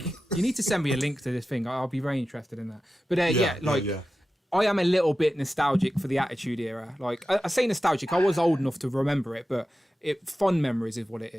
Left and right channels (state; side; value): normal; both; correlation 0.93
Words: you need to send me a link to this thing. I'll be very interested in that. But I am a little bit nostalgic for the Attitude Era. Like, I say nostalgic. I was old enough to remember it, but fond memories is what it